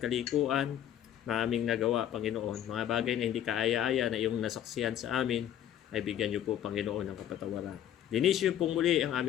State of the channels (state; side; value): quieter; right; 10.8 dB